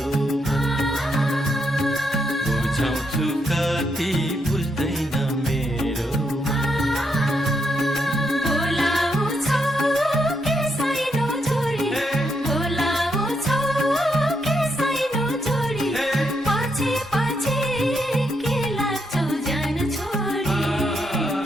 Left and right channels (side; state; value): both; normal; correlation 0.79